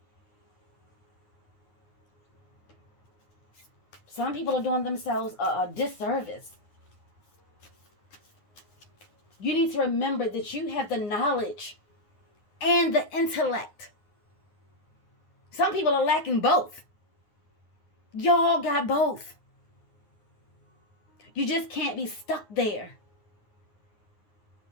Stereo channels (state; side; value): late; right; 9.6 ms